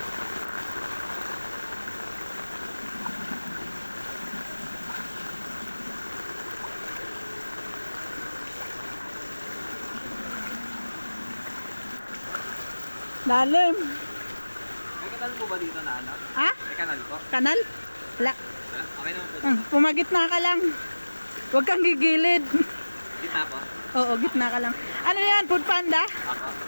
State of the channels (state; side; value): inverted; both; correlation -1.00